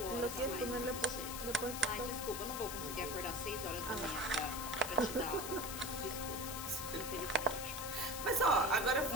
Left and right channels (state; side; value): noise; left; hiss, 6 dB below the sound